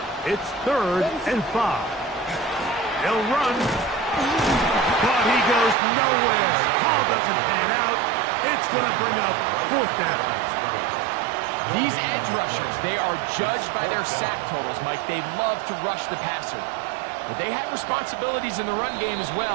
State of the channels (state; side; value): drops out; left; at 5.8 s